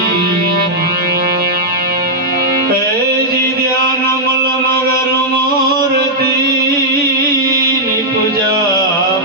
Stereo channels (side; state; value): both; normal; correlation -0.07